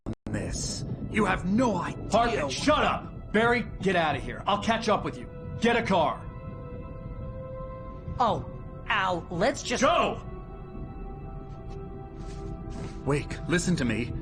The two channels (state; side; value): identical; both; correlation 1.00